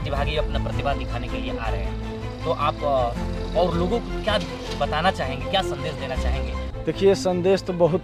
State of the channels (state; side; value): identical; both; correlation 1.00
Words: अपना प्रतिभा दिखाने के लिए आ रहे हैं। तो आप और लोगों को क्या बताना चाहेंगे, क्या संदेश देना चाहेंगे? देखिए, संदेश तो